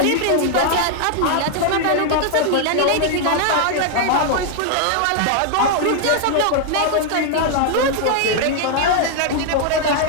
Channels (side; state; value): both; different; correlation 0.00